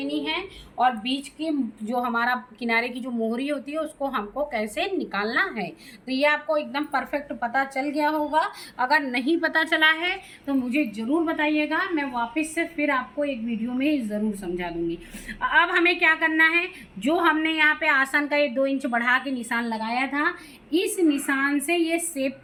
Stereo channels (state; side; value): identical; both; correlation 1.00